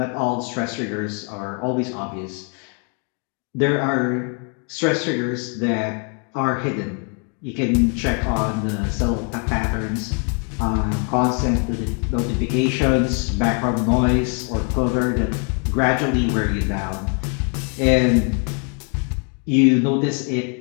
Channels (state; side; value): quieter; right; 39.0 dB